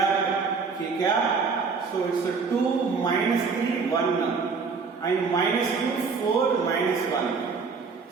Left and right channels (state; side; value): quieter; left; 5.0 dB